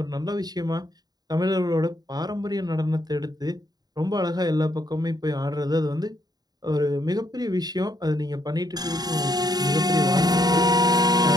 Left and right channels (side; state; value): left; late; 0.19 ms